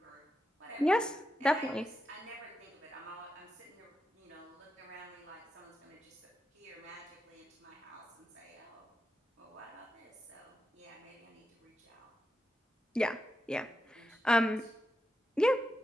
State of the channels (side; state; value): both; normal; correlation 0.87